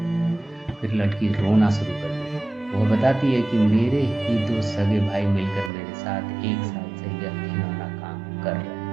फिर लड़की रोना शुरू कर देती। वह बताती है कि मेरे ही 2 सगे भाई मिलकर मेरे साथ 1 साल से यह घिनौना काम कर रहे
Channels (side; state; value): left; drops out; at 5.7 s